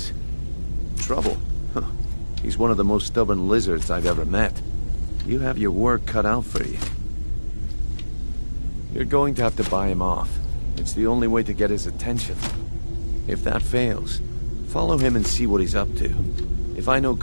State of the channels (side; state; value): both; inverted; correlation -1.00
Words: Trouble? Huh. He's one of the most stubborn lizards I've ever met. You have your work cut out for you. You're going to have to buy him off. It's the only way to get his attention. If that fails, follow him and see what he's up to. If I know